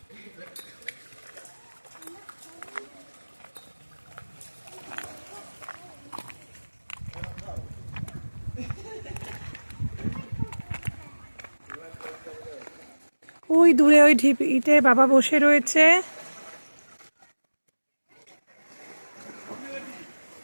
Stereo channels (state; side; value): inverted; both; correlation -1.00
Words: ওই দূরে ওই ঢিপিতে বাবা বসে রয়েছে।